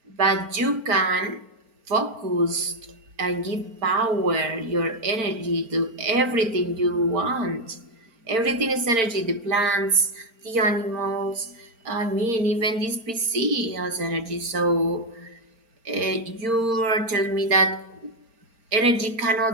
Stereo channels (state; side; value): late; left; 4.4 ms